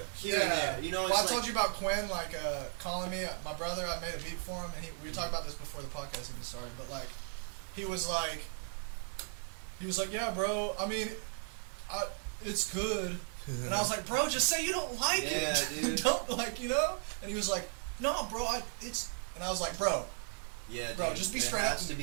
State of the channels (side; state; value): left; silent; 54 dB below the other